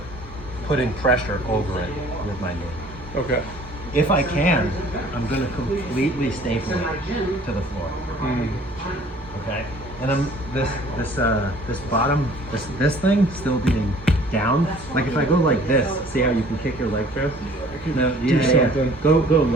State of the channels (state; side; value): normal; both; correlation 0.53